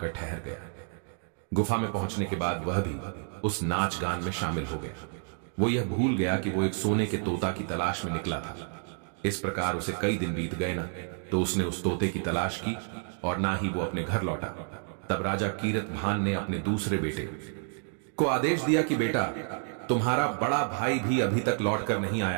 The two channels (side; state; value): left; silent; 56 dB below the other